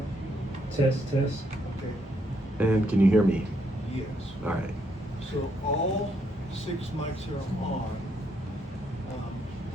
Test. okay, And can you hear me? yes. All right. So all 6 mics are on.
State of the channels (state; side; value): normal; both; correlation 0.75